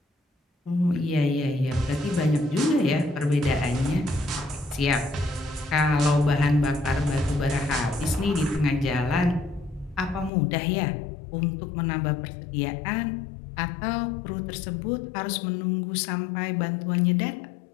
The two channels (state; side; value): drops out; right; at 10.3 s